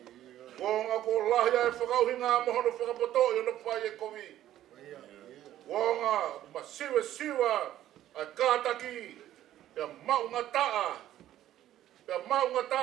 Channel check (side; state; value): left; quieter; 12.7 dB